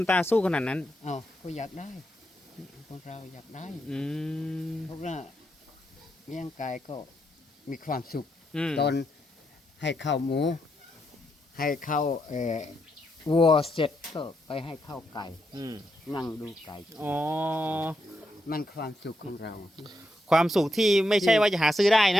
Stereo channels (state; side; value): normal; both; correlation 0.81